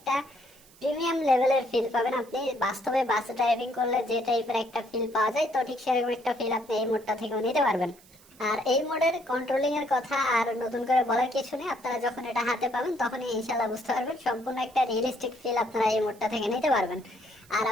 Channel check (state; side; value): noise; right; hiss, 26 dB below the sound